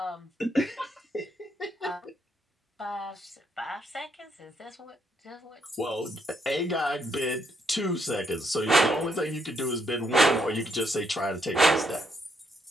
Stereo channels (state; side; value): normal; both; correlation 0.75